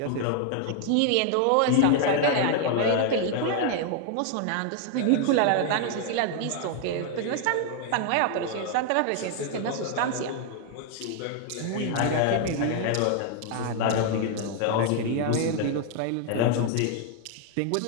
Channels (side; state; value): both; different; correlation 0.00